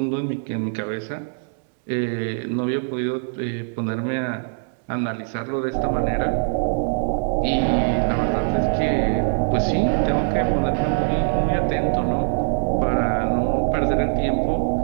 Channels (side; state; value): left; silent; digital silence